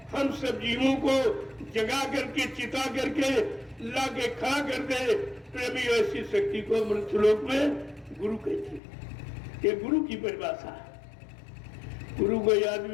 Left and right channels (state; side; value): drops out; right; at 8.8 s